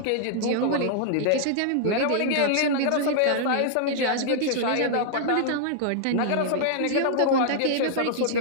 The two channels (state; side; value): different; both; correlation -0.01